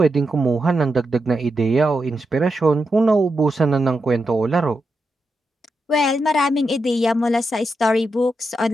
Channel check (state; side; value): normal; both; correlation 0.87